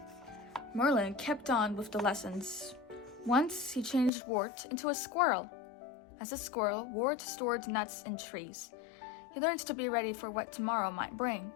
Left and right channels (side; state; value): right; drops out; at 4.1 s